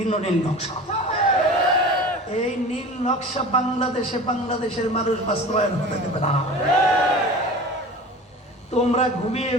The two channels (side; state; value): both; normal; correlation 0.37